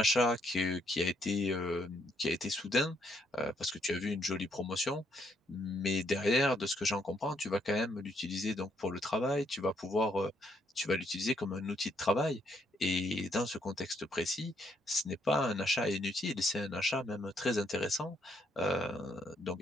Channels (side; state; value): both; normal; correlation 0.72